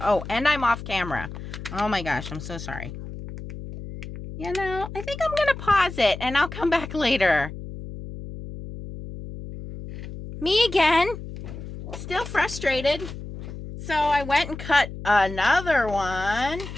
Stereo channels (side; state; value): left; noise; hum, 11 dB below the sound